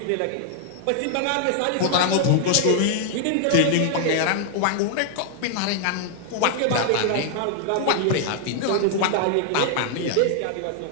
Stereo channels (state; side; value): different; both; correlation 0.00